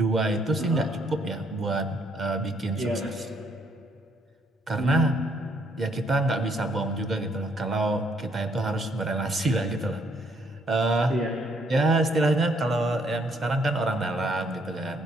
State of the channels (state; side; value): normal; both; correlation 0.69